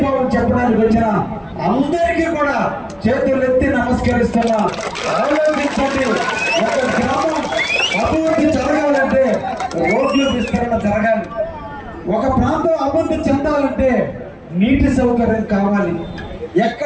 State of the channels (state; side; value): identical; both; correlation 1.00